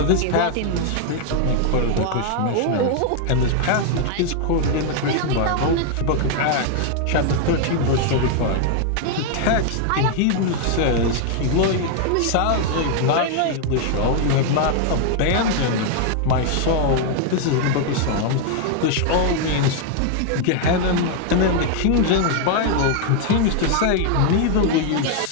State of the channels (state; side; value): different; both; correlation 0.00